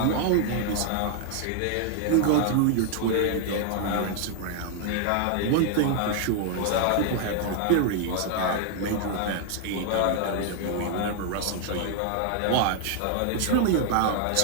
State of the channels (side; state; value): both; different; correlation 0.00